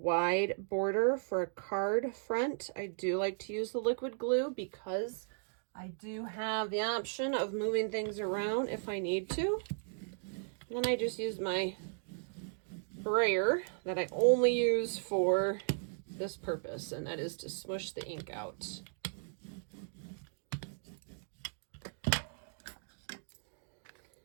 border for a card front, I do like to use the liquid glue because I do have the option of moving things around if I need to. And then I just use my brayer that I only use for this purpose, and that is to smush the ink out.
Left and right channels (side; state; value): left; silent; digital silence